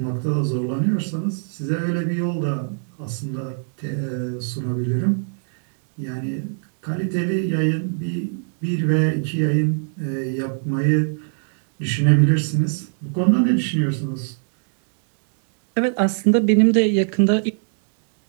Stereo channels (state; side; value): silent; left; digital silence